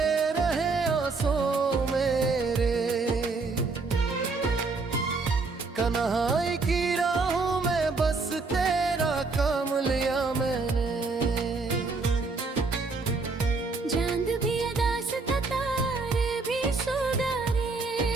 रहे आंसू मेरे, कन्हाई की राहों में बस तेरा काम लिया मैंने। चांद भी अदास था, तारे भी सुधारे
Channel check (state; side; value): quieter; left; 4.0 dB